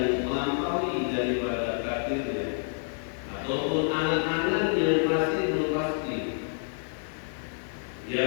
melampaui daripada takdirnya, ataupun anak-anak yang masih belum pasti,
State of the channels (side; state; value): right; silent; 59 dB below the other